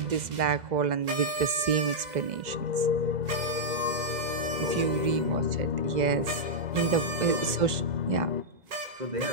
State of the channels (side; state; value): left; late; 2.0 ms